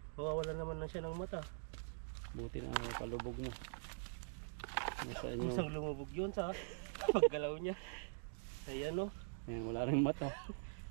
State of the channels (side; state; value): left; silent; digital silence